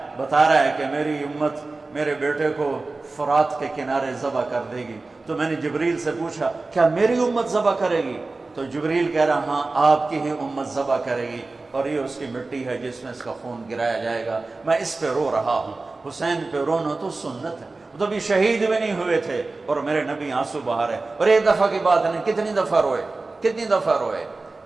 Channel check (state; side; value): quieter; left; 3.5 dB